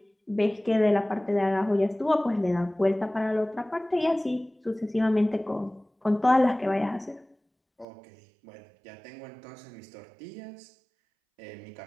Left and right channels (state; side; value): drops out; left; at 7.9 s